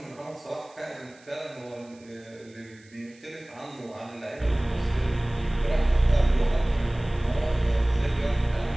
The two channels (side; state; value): right; noise; hiss, 28 dB below the sound